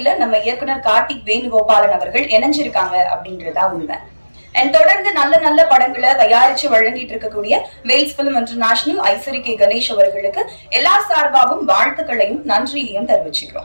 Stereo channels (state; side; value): inverted; both; correlation -1.00